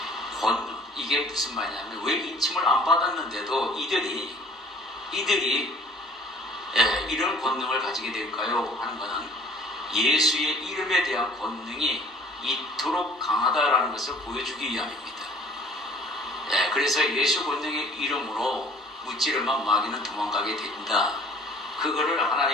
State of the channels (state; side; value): normal; both; correlation 0.53